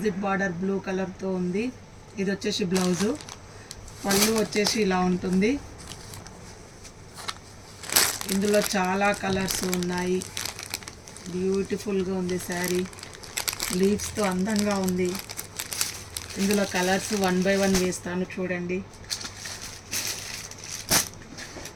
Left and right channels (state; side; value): identical; both; correlation 1.00